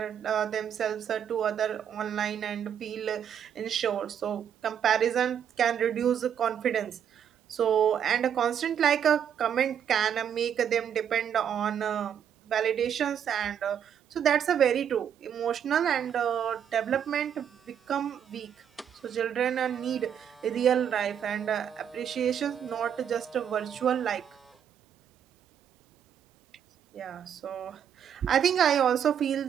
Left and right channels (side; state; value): left; quieter; 8.7 dB